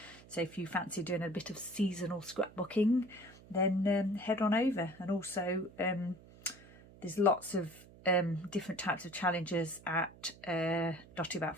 So if you fancy doing a bit of seasonal scrapbooking, then head on over. And also there's lots of different types of challenges at Dotty About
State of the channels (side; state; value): right; noise; hum, 21 dB below the sound